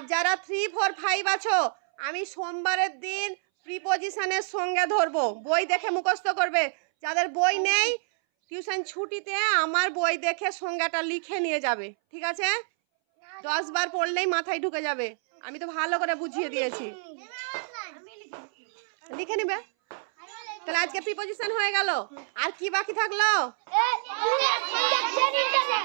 যারা 3, 4, 5 আছো, আমি সোমবারের দিন প্রিপজিশনের সংজ্ঞা ধরবো, বই দেখে মুখস্থ করবে। যাদের বই নেই, টিউশন ছুটিতে আমার বই দেখে সংজ্ঞাটা লিখে নিয়ে যাবে, ঠিক আছে? 10 বার পড়লেই মাথায় ঢুকে যাবে, আমি তো ভালো করে বুঝিয়ে দিয়েছি। লিখে নিবে। তাহলে আজকে প্রিপোজিশন হয়ে গেল। আর কি বাকি থাকলো?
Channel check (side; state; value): left; silent; 60 dB below the other